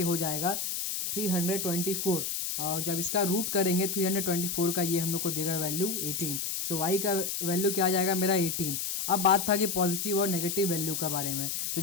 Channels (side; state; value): left; noise; hiss, 2 dB below the sound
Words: हो जाएगा 324 और जब इसका रूट करेंगे 324 का ये हम लोग को देगा वैल्यू 18। सो y का वैल्यू क्या आ जाएगा मेरा 18। अब बात था कि पॉजिटिव और नेगेटिव वैल्यू का बारे में, तो